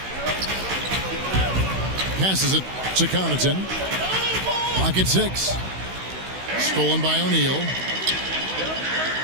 Passes it to Connaughton. Pocket 6. Stolen by O'Neal.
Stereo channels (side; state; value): left; late; 16 ms